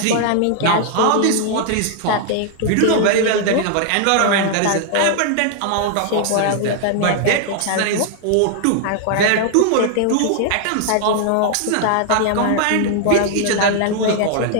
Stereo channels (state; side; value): different; both; correlation 0.00